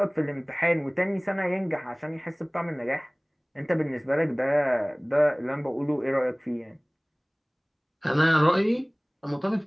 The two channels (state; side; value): identical; both; correlation 1.00